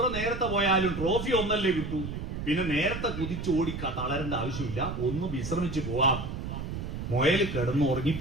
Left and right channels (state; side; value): noise; right; rumble, 6 dB below the sound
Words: നേരത്തെ പോയാലും ട്രോഫി ഒന്നല്ലേ കിട്ടൂ, പിന്നെ നേരത്തെ കുതിച്ചോടി തളരേണ്ട ആവശ്യമില്ല, ഒന്ന് വിശ്രമിച്ചു പോവാം. മുയൽ കിടന്ന്